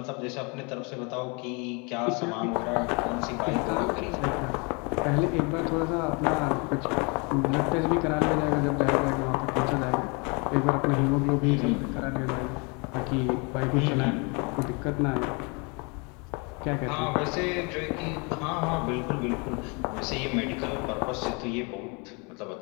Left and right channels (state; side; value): quieter; right; 31.5 dB